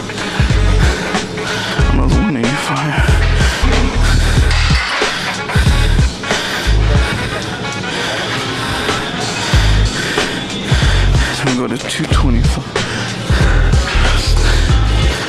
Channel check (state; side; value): identical; both; correlation 1.00